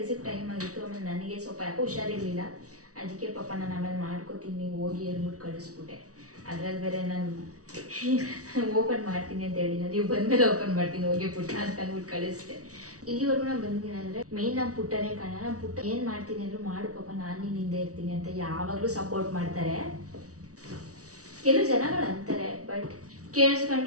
ಟೈಮ್ ಆಗಿತ್ತು. ಆಮೇಲೆ ನನಗೆ ಸ್ವಲ್ಪ ಯಾಕೋ ಹುಷಾರಿರಲಿಲ್ಲ, ಅದಕ್ಕೆ ಪಾಪ ನಾನು ಆಮೇಲೆ ಮಾಡ್ಕೋತೀನಿ ಹೋಗಿ ಅಂದ್ಬಿಟ್ಟು ಕಳಿಸ್ಬಿಟ್ಟೆ. ಅದ್ರಲ್ಲಿ ಬೇರೆ ನಾನು ಓಪನ್ ಮಾಡ್ತೀನಿ ಅಂತ ಹೇಳಿಲ್ಲ, ನೀವು ಬಂದಮೇಲೆ ಓಪನ್ ಮಾಡ್ತೀನಿ ಹೋಗಿ ಪುಟ್ಟ ಅಂತ ಅಂದ್ಬಿಟ್ಟು ಕಳಿಸ್ದೆ. ಇಲ್ಲಿವರೆಗೂ ನಾನು ಬಂದಿದ್ದೀನಿ ಅಂದರೆ ಮೇಯ್ನ್ ನಮ್ಮ ಪುಟ್ಟನೇ ಕಾರಣ. ನಮ್ಮ ಪುಟ್ಟ ಏನು ಮಾಡ್ತೀನಿ ಅಂದರೂ ಮಾಡು ಪಾಪ, ನಾನು ನಿನ್ನ ಹಿಂದೆ ಇರ್ತೀನಿ ಅಂತ ಯಾವಾಗಲೂ ಸಪೋರ್ಟ್ ಮಾಡ್ತಾರೆ. ಕೆಲವು ಜನಗಳು ಅಂತಾರೆ, ಬಟ್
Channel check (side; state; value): left; late; 0.67 ms